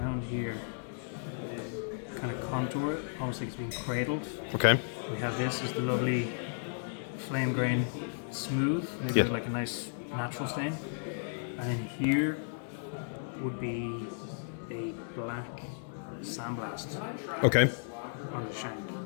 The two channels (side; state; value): right; silent; digital silence